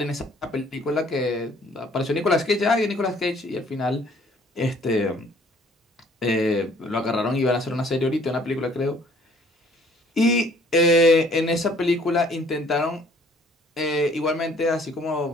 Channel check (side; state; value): both; normal; correlation 0.58